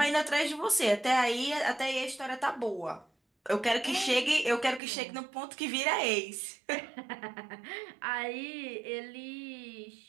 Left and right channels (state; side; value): drops out; left; at 4.8 s